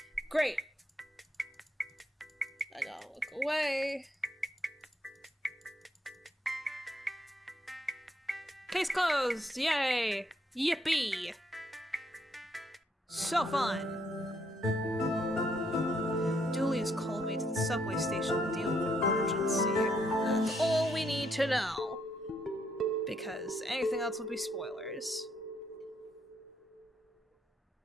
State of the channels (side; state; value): both; normal; correlation 0.74